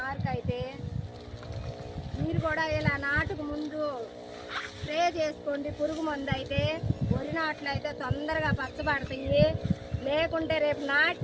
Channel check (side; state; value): both; identical; correlation 1.00